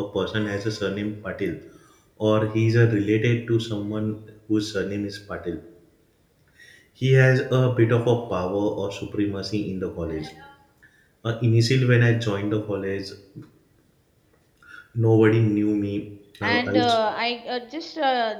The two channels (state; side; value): identical; both; correlation 1.00